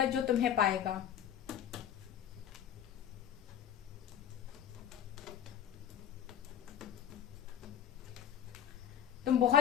जो तुम्हें पाएगा। तुम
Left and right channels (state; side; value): quieter; right; 9.7 dB